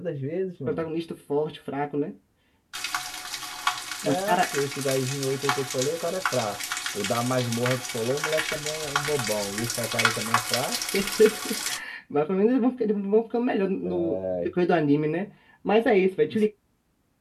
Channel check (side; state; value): both; identical; correlation 1.00